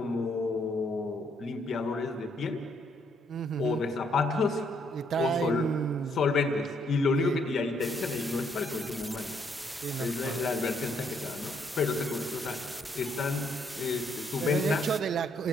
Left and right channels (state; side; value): normal; both; correlation 0.71